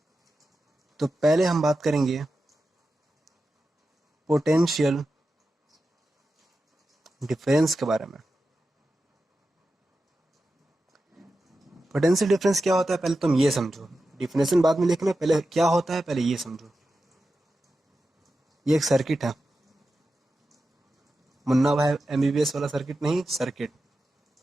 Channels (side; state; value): both; normal; correlation 0.91